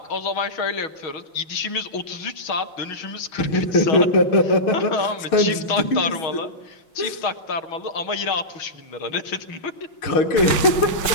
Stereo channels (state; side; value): late; right; 6.3 ms